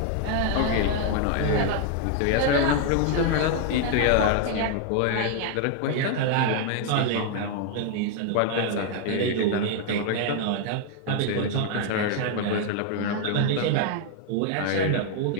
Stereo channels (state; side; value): different; both; correlation 0.00